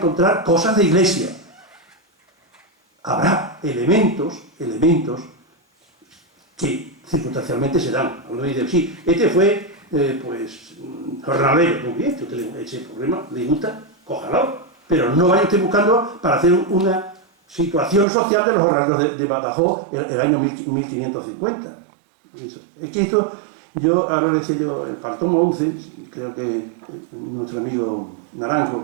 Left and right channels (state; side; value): drops out; left; at 18.1 s